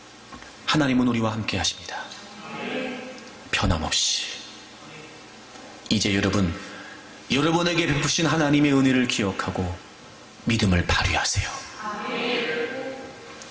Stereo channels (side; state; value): both; identical; correlation 1.00